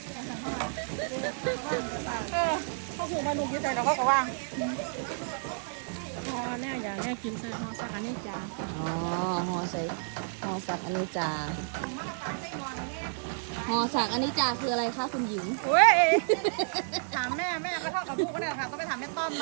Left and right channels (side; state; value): left; silent; digital silence